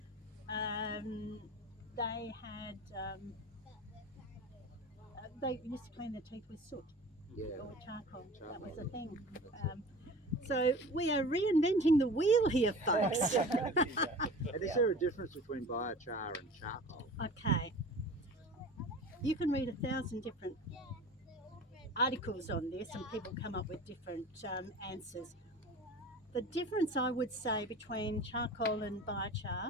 They had they used to clean their teeth with soot or charcoal. That was a thing. So we are reinventing the wheel here, folks. And is there a difference between biochar and charcoal? Okay. You can read 1,000 different articles on this, and people come up with different answers. The difference, I would say, between charcoal and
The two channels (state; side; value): normal; both; correlation 0.39